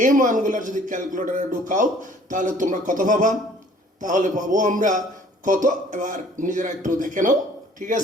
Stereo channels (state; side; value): normal; both; correlation 0.55